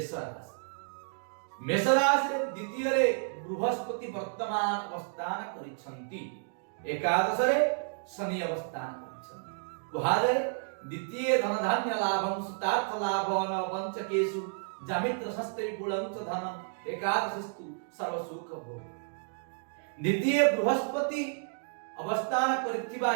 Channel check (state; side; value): silent; left; digital silence